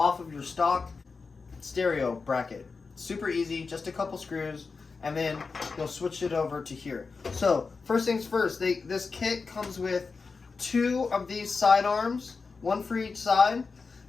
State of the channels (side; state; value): right; quieter; 4.6 dB